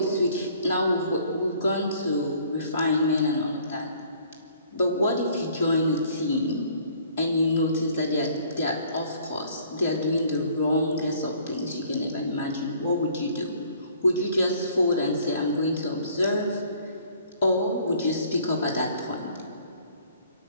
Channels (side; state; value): both; inverted; correlation -0.57